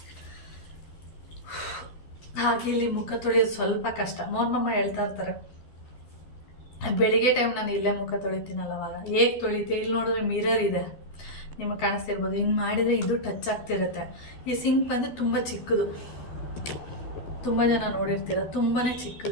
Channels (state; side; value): late; right; 12 ms